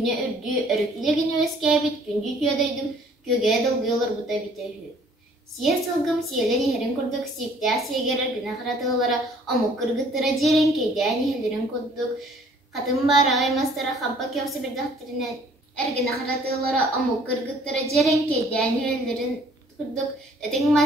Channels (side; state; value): both; normal; correlation 0.57